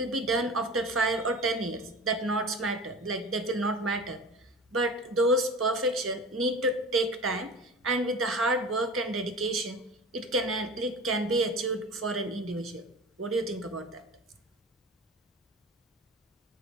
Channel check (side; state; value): both; normal; correlation 0.35